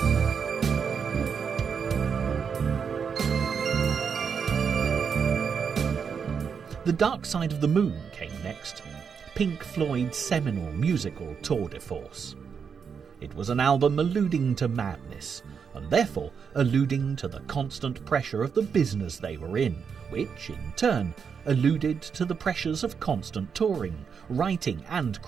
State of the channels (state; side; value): quieter; left; 6.5 dB